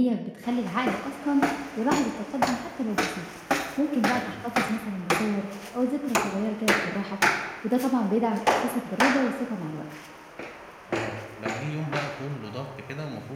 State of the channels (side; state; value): both; identical; correlation 1.00